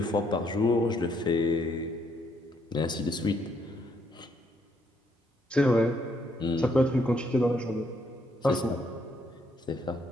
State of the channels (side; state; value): both; normal; correlation 0.72